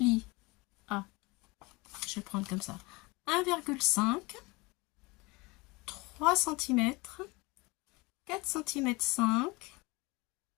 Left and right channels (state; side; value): quieter; right; 24.8 dB